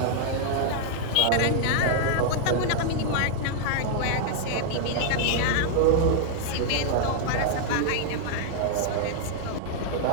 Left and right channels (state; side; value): different; both; correlation -0.01